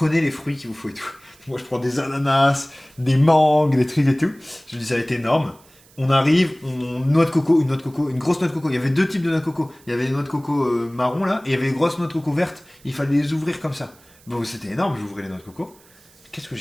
les fruits qu'il vous faut et tout. Moi je prends des ananas, des mangues, des trucs et tout. Je me dis ça va être énorme. On arrive, une grosse noix de coco. Il y avait 2 types de noix de coco. Il y avait les noix de coco marron là, et il y avait les grosses noix de coco vertes. Il fallait les ouvrir comme ça. Bon c'était énorme, j'ouvrais les noix de coco. Qu'est-ce que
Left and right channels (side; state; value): right; noise; hiss, 28 dB below the sound